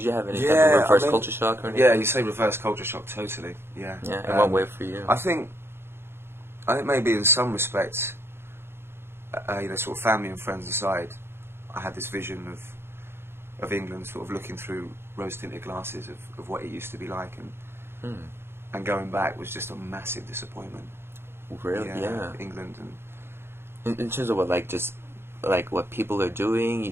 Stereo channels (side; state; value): left; late; 0.11 ms